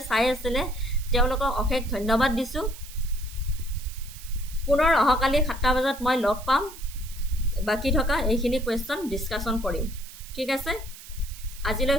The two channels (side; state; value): right; noise; hiss, 16 dB below the sound